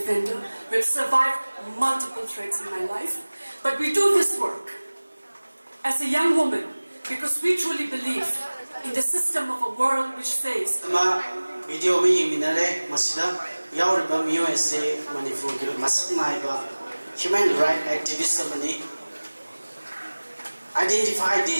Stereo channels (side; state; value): both; inverted; correlation -1.00